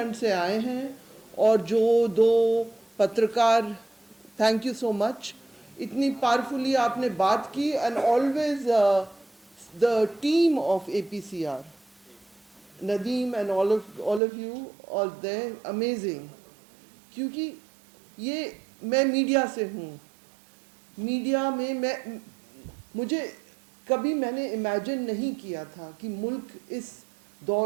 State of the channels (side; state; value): left; drops out; at 14.2 s